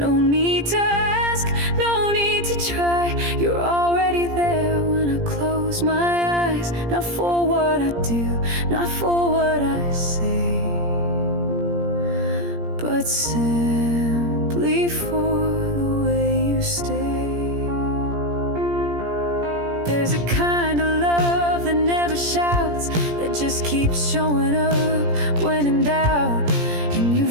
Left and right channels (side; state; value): left; late; 17 ms